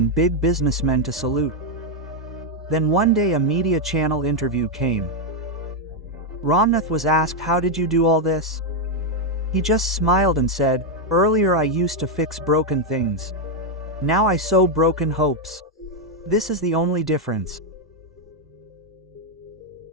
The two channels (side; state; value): both; normal; correlation 0.01